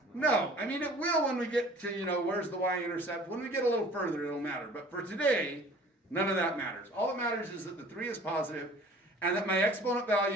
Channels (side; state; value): both; normal; correlation 0.48